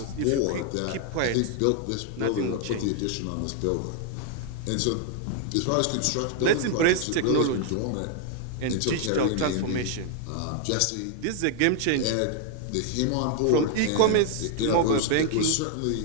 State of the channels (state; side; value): different; both; correlation 0.00